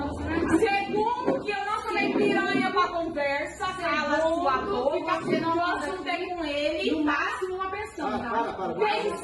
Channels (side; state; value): both; identical; correlation 1.00